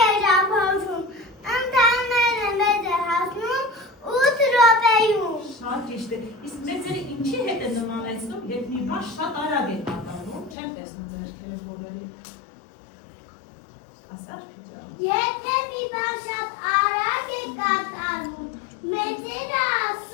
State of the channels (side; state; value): right; drops out; at 10.6 s